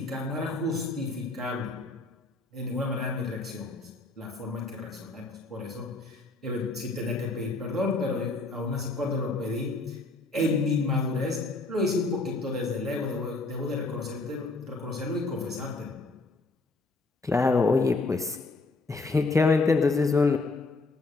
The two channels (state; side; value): quieter; right; 3.3 dB